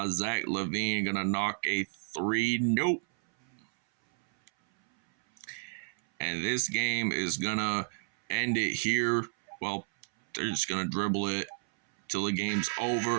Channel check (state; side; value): silent; left; 57 dB below the other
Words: Zach LaVine gonna knock a 3. Nope. And this game is gonna end it here. Well, they're just gonna dribble it till the game's